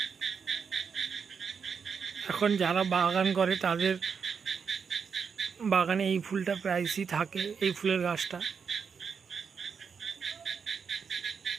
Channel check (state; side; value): quieter; left; 6.2 dB